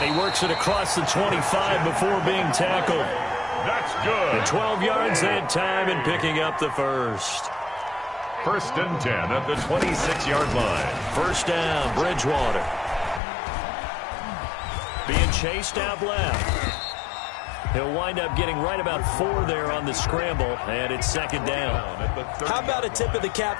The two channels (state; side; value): drops out; right; at 13.2 s